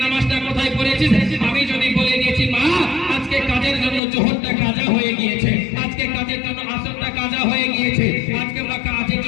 নামাজটা কোথায় পড়েছিস? আমি যদি বলে দিয়েছি মা আজকে কাজের জন্য জোহরটা কাজা হয়ে গিয়েছে, আজকে কাজের জন্য আসরটা কাজা হয়ে গিয়েছে, আজকে কাজের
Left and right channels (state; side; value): drops out; right; at 4.0 s